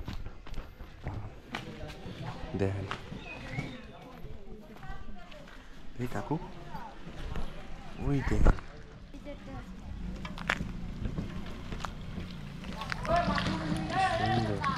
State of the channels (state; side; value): identical; both; correlation 1.00